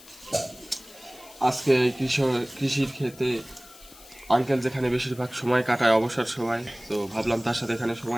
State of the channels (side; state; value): left; noise; hiss, 21 dB below the sound